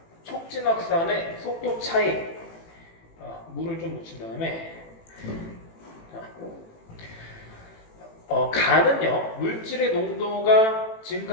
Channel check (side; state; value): right; late; 18 ms